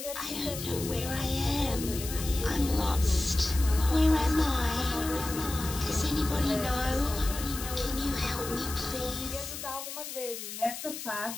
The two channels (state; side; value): noise; left; hiss, 8 dB below the sound